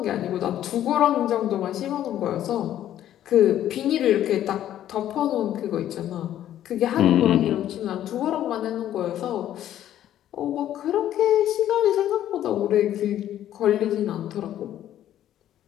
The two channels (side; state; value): right; quieter; 11.8 dB